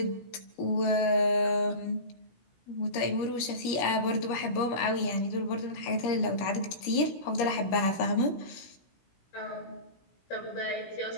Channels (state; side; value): late; right; 17 ms